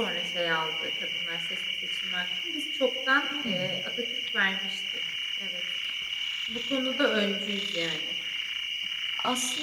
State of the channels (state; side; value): identical; both; correlation 1.00